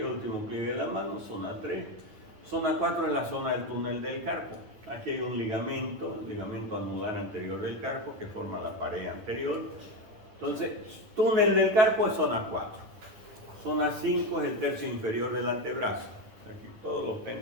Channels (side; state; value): left; late; 9.6 ms